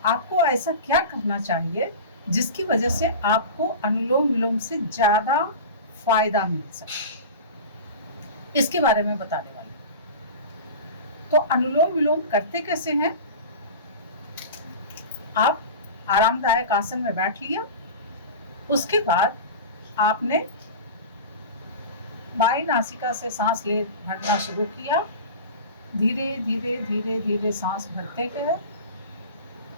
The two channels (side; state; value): both; inverted; correlation -0.31